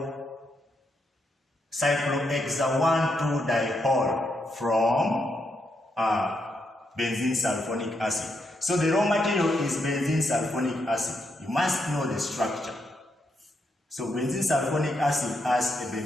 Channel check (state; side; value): normal; both; correlation 0.80